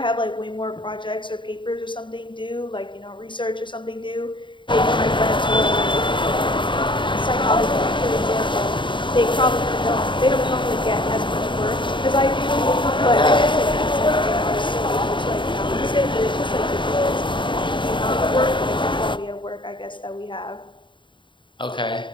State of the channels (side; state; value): right; late; 0.23 ms